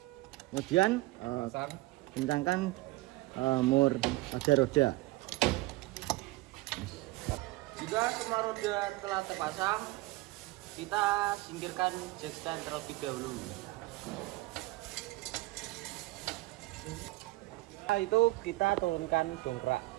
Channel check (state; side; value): quieter; left; 20.0 dB